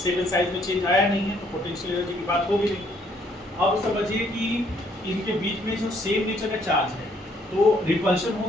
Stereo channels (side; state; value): both; normal; correlation 0.66